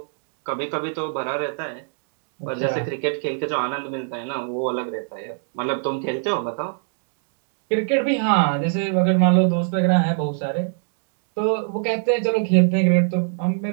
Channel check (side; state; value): left; silent; 63 dB below the other